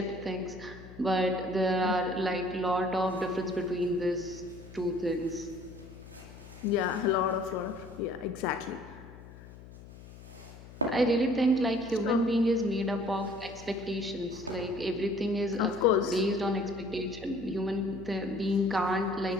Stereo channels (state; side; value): noise; left; hum, 17 dB below the sound